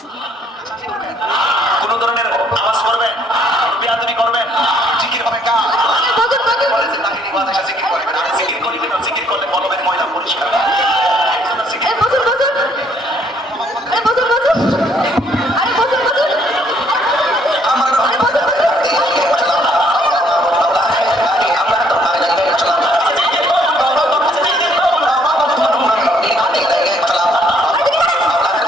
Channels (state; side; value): normal; both; correlation 0.65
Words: কোন ধরনের আওয়াজ করবেন, বেয়াদবি করবেন, জিকির হবে কাজ। বলেছে তাহিনী ওয়াজ এসে জিকির করবেন। আর জিকির করিবেন না, জিকির করলে বলবেন ময়লা পরিষ্কার। জিকির বসুন। আরে বসুন। আরে বসুন। আমার